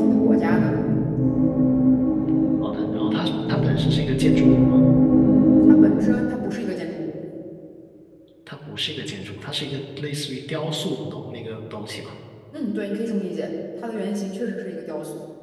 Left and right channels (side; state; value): both; identical; correlation 1.00